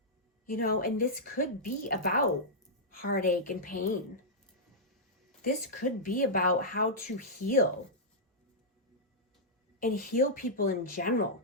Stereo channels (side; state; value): both; normal; correlation -0.09